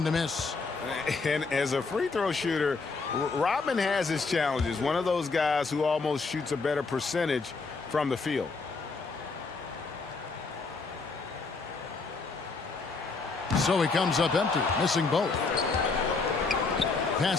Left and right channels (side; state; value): right; quieter; 4.2 dB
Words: to miss. And as a free throw shooter, Rodman has his challenges. One of those guys who almost shoots a better percentage from the field. So he comes up empty, missing both.